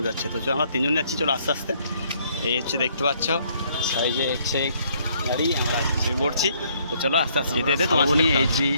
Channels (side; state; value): both; inverted; correlation -0.66